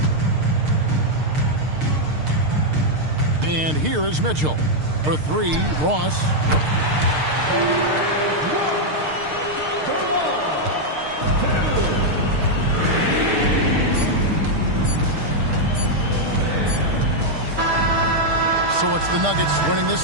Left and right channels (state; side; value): late; left; 6.6 ms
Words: And here is Mitchell. For three, Ross. So it's the Nuggets winning this